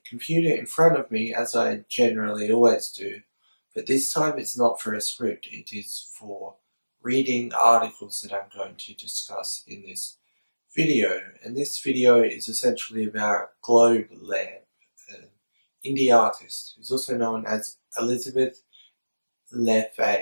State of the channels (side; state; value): both; inverted; correlation -1.00